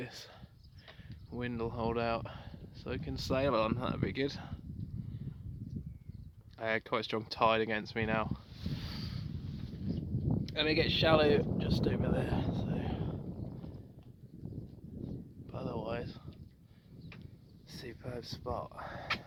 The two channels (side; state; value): both; identical; correlation 1.00